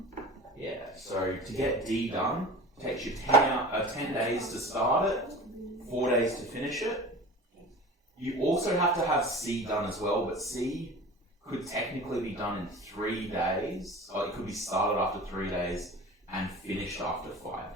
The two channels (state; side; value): normal; both; correlation 0.37